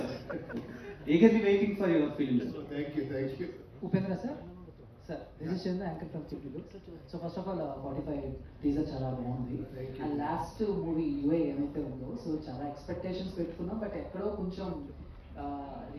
eagerly waiting for your film. Thank you. Upendra sir, this is Chandra, anchor from Chipulu. So first of all, 45 teaser చాలా బాగుంది. Thank you. And last movie UI ఏమైతే ఉందో, సో చాలా ఎక్స్పెక్టేషన్స్ పెట్టుకున్నాం, బట్ ఎక్కడో కొంచెం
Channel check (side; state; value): both; identical; correlation 1.00